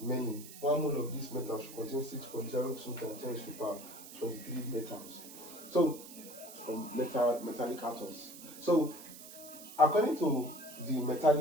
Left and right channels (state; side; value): noise; right; hiss, 15 dB below the sound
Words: Many. One mole of this metal should contain 6.02 times 10 to the power 23 metals. So, metallic atoms. So, according to the